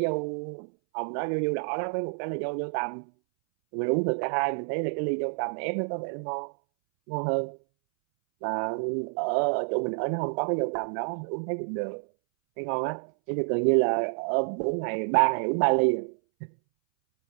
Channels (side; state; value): left; silent; 59 dB below the other